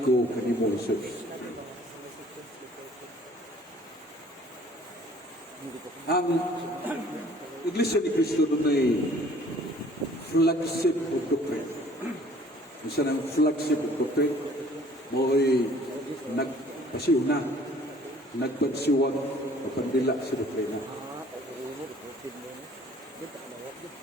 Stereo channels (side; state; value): both; normal; correlation 0.55